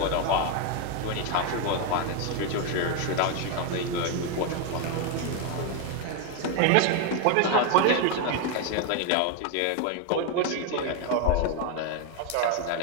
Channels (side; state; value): both; different; correlation 0.01